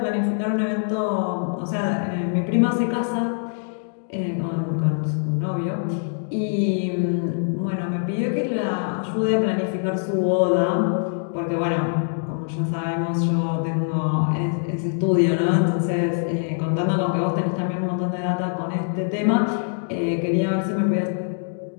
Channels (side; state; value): right; silent; digital silence